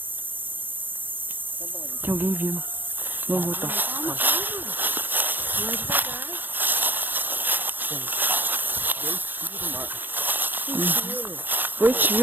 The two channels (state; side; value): late; left; 0.090 ms